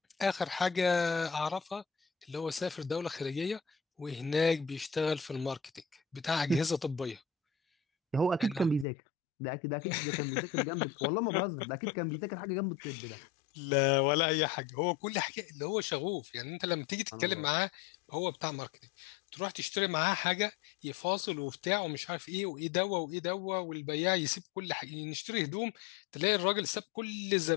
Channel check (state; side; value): drops out; right; at 8.8 s